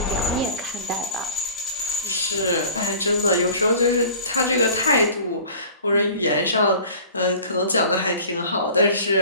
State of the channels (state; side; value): inverted; both; correlation -0.44